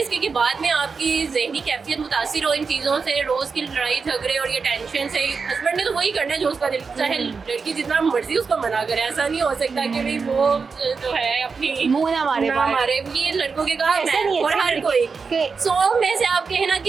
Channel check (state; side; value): quieter; left; 5.0 dB